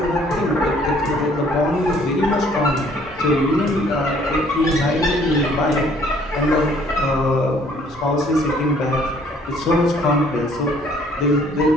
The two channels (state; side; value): normal; both; correlation 0.60